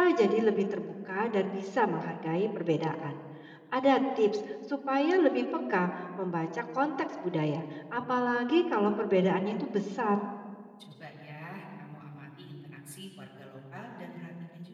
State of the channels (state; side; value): identical; both; correlation 1.00